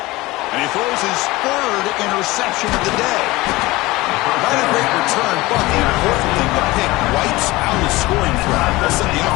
And he throws his third interception of the day. Not a great return, but the important thing, the pick wipes out his scoring threat. They'll set the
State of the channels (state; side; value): quieter; right; 20.3 dB